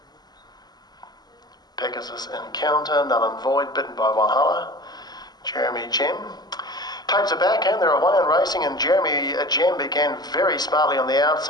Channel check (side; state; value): right; late; 0.20 ms